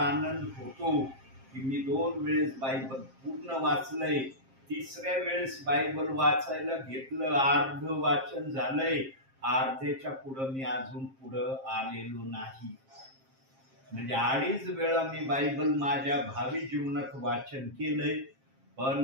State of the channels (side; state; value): left; late; 7.5 ms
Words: होतो की मी 2 वेळेस बायबल पूर्ण वाचलंय. 3ऱ्या वेळेस बायबल वाचायला घेतलं, अर्ध वाचन झालंय, अर्ध्याच्या पुढं मी अजून पुढं आलेलो नाही. म्हणजे 2.5 वेळा मी बायबल माझ्या भावी जीवनात वाचन केलंय. पण